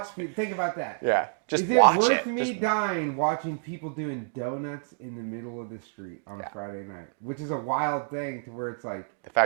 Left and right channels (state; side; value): silent; left; digital silence